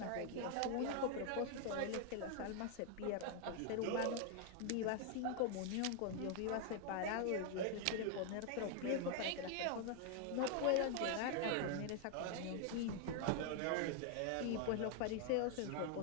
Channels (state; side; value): different; both; correlation 0.00